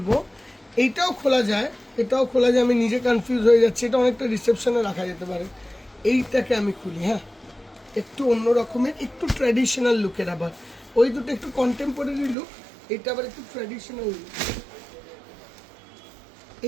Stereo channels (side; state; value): left; drops out; at 12.4 s